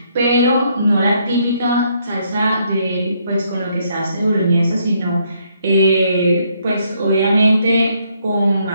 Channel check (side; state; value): both; inverted; correlation -0.71